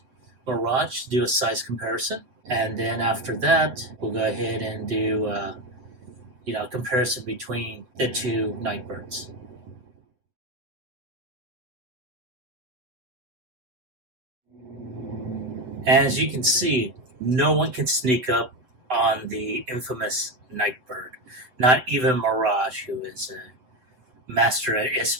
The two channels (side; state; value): left; late; 7.8 ms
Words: Mirage to do a size comparison. And then after that, we'll go ahead and do a comparison between the 2 Nightbirds. As you can see, no one can sneak up on the infamous Nightbird. Not even Mirage, who is a master at